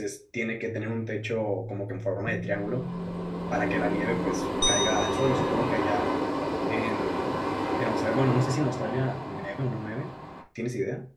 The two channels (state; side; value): identical; both; correlation 1.00